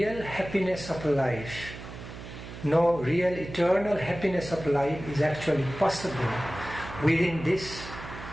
happiness of life, no real eternal happiness of life is actually possible within this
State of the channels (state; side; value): noise; right; hum, 12 dB below the sound